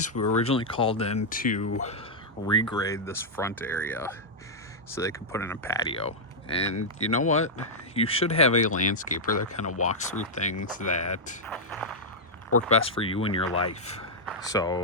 We were originally called in to regrade this front area so they could put in a patio. And you know what? You should have a landscaper that kind of walks through things that work best for you in your life.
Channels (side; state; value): both; normal; correlation -0.06